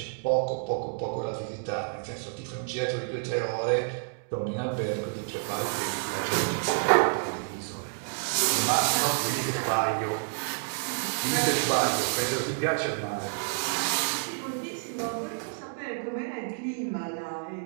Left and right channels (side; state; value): left; silent; 58 dB below the other